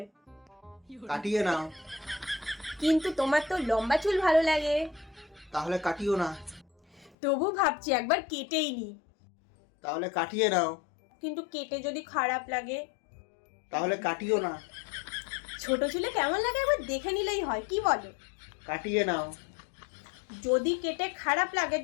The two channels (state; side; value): drops out; right; at 7.2 s